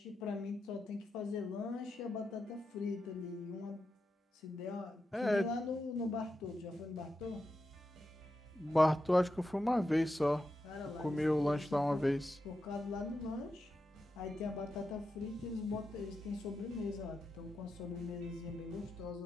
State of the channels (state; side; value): normal; both; correlation 0.88